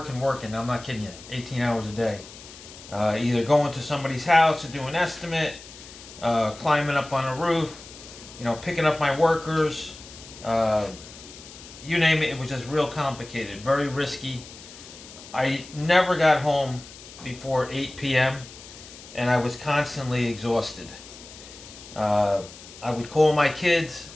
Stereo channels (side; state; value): left; noise; hiss, 17 dB below the sound